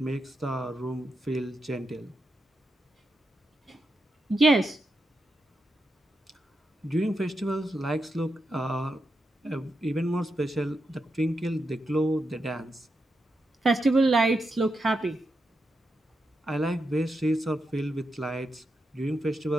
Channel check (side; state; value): both; normal; correlation 0.86